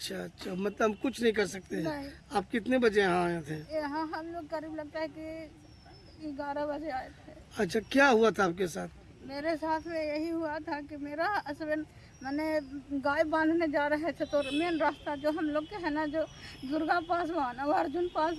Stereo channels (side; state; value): both; identical; correlation 1.00